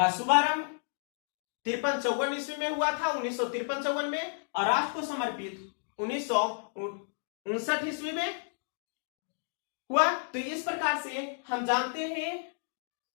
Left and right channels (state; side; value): silent; right; digital silence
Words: शुभारंभ 53-54 ईस्वी में हुआ था, 1953-54 में, और राष्ट्र को समर्पित 1959 ईस्वी में हुआ। तो इस प्रकार से हम जानते हैं